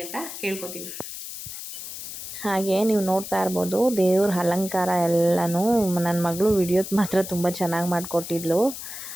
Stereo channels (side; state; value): left; noise; hiss, 9 dB below the sound